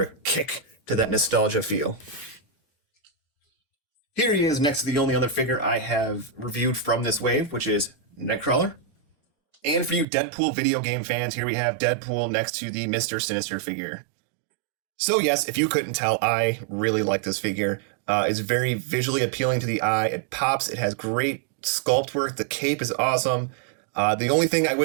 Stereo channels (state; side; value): drops out; left; at 10.1 s